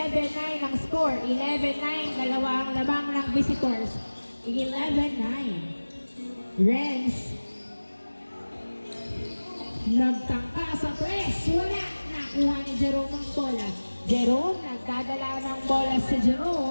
ang score. 11-9. Dalawang lamang ng visitors. 11-9. Renz. Nagtangka sa press. Wala. Nakuha ni Jerome ang bola. Jerome, nagdadala ng bola si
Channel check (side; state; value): both; inverted; correlation -1.00